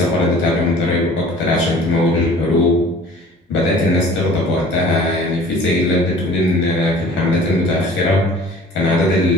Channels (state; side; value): normal; both; correlation 0.48